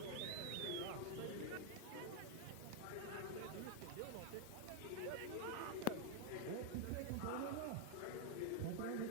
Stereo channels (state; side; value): different; both; correlation 0.00